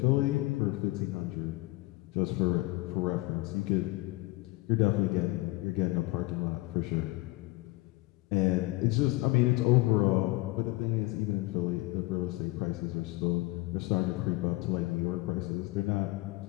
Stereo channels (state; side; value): quieter; right; 20.8 dB